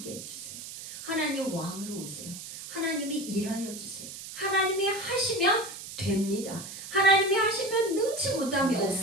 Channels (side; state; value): right; noise; hiss, 11 dB below the sound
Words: 해주세요. 하나님 왕으로 오세요. 하나님이 일하여 주세요. 하나님이 하시면 됩니다. 하나님이 하시면 능치 못함이